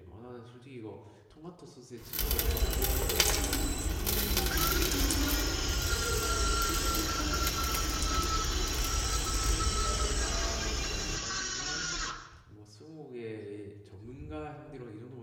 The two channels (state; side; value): identical; both; correlation 1.00